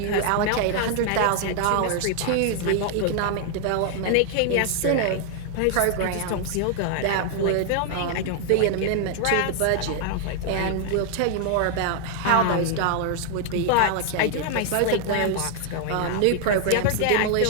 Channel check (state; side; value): different; both; correlation 0.00